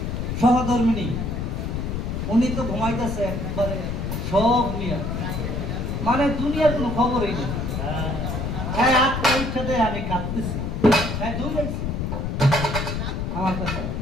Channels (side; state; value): left; noise; rumble, 2 dB below the sound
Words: সহধর্মিনী উনি তো ঘুমাইতেছে একবারে সব নিয়ে, মানে দুনিয়ার কোনো খবরই নেই। হ্যাঁ আত্মা ইচ্ছা দেয় আমি কাঁদতেছি, হ্যাঁ দৌড়াইছি আমার কাছে।